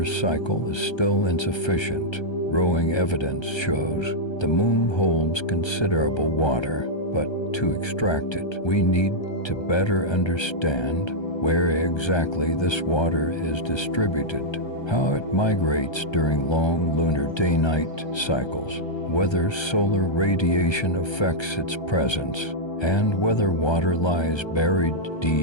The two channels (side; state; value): right; late; 1.3 ms